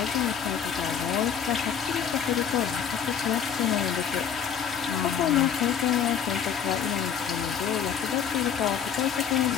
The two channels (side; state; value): right; quieter; 7.9 dB